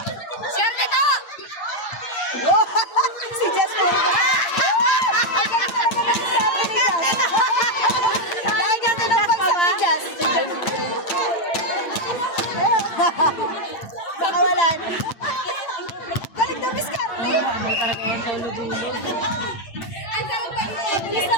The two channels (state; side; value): late; right; 8.9 ms